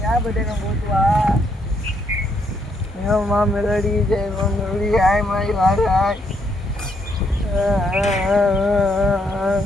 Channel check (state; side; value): normal; both; correlation 0.74